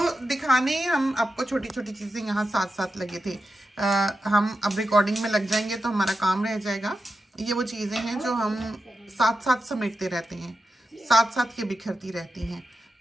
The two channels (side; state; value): both; normal; correlation 0.90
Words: दिखाने हम आपको छोटी छोटी चीज़ें यहाँ साथ साथ लगे थे। हम अब रिकॉर्डिंग में लग जाएंगे तो हमारा काम रह जाएगा। ये वो चीज़ें हैं जो हम साथ साथ समेटते रहते हैं, साथ साथ ये बिखरती रहती हैं।